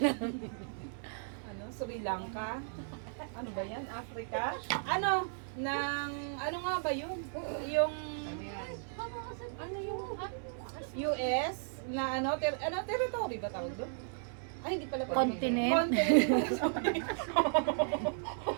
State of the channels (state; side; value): silent; left; digital silence